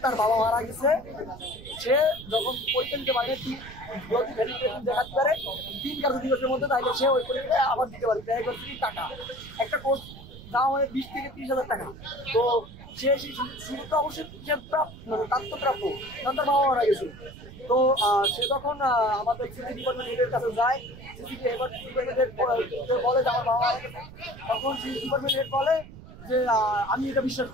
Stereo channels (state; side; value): noise; right; rumble, 16 dB below the sound